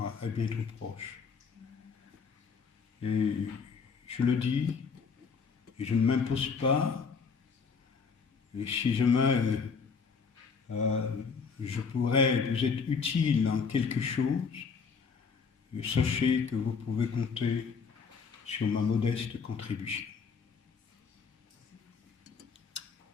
est bientôt proche. Et je le dis, et je ne m'impose pas, et si jamais je pourrais vous être utile en quelque chose, sachez que vous pouvez compter sur ma modeste contribution.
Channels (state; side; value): quieter; right; 5.5 dB